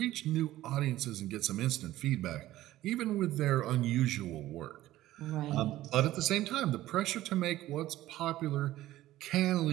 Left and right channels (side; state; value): left; quieter; 15.1 dB